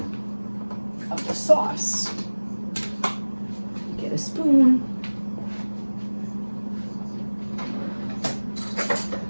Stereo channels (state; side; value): inverted; both; correlation -1.00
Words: the sauce. Get a spoon.